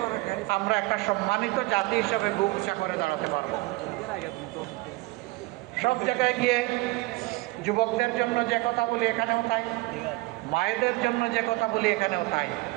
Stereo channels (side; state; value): left; quieter; 22.1 dB